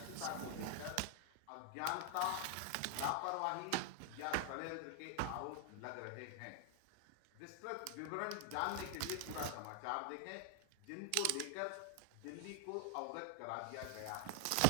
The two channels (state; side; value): different; both; correlation 0.00